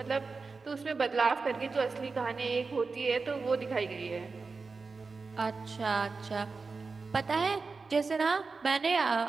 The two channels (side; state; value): left; quieter; 4.3 dB